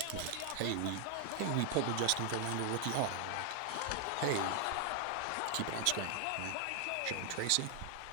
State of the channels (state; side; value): different; both; correlation 0.00